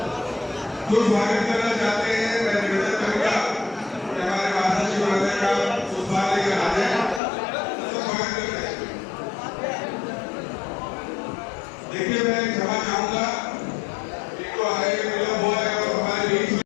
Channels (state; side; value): drops out; right; at 7.2 s